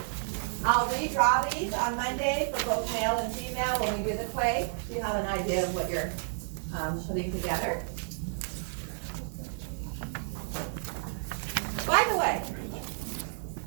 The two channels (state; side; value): silent; left; 57 dB below the other